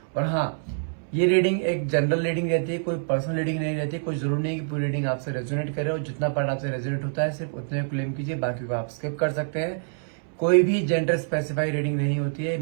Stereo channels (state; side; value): silent; left; 61 dB below the other